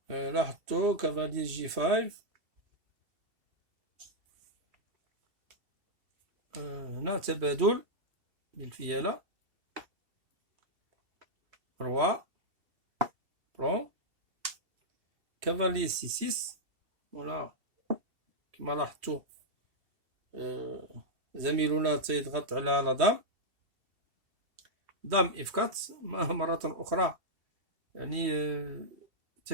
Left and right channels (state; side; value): late; left; 2.7 ms